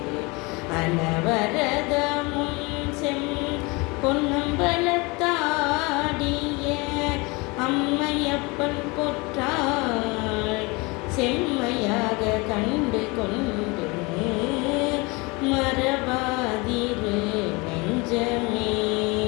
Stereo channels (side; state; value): right; quieter; 26.5 dB